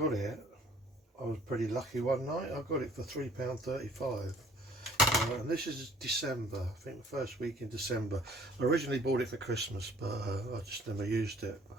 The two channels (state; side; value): normal; both; correlation 0.57